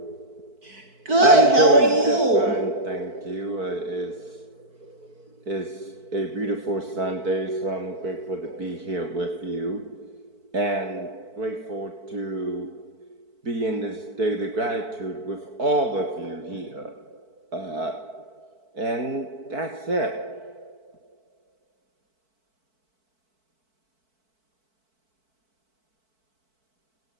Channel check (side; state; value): left; late; 4.5 ms